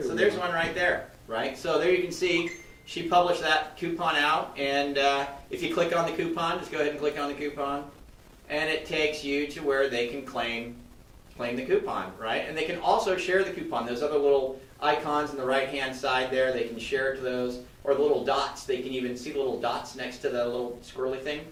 So there's one right there, right? So there you can see she published that coupon out, and if you click on the coupon, just go ahead and click on the coupon, and it takes you to where they can claim the coupon, right? And they can also share the coupon. Those other little icons on the right-hand side there, they can share it to those, or the little dots. They can even see the little dots next to the little squirrely thing.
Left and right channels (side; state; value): both; identical; correlation 1.00